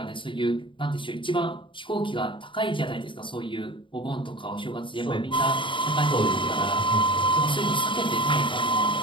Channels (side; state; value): right; late; 0.24 ms